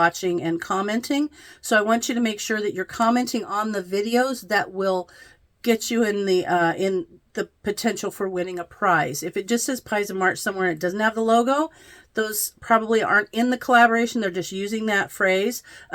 and commenting. So I want you to make sure that you're commenting on the videos that will get you in the potential for winning a prize. If it just says Pies of March somewhere and it doesn't have the logo, those probably aren't in the collaboration. They're just using that phrase.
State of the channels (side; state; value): both; identical; correlation 1.00